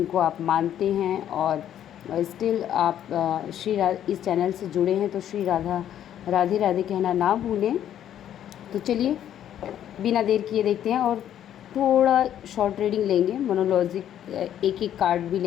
आप मानते हैं। और स्टिल आप इस चैनल से जुड़े हैं तो श्री राधे राधे कहना ना भूलें। तो चलिए बिना देर किए देखते हैं और थोड़ा शॉर्ट रीडिंग लेंगे। मोनोलॉजिक एक एक कार्ड भी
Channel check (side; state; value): right; quieter; 10.6 dB